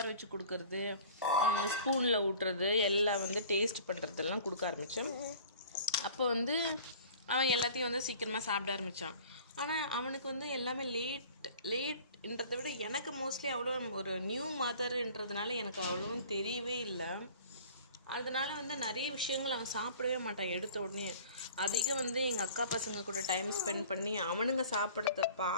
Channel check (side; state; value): both; inverted; correlation -0.46